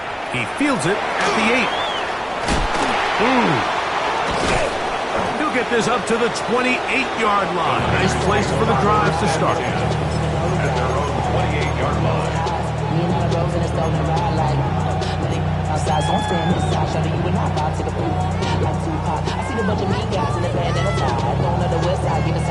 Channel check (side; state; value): both; identical; correlation 1.00